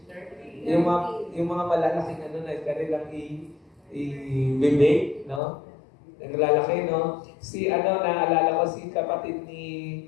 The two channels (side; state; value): right; drops out; at 5.4 s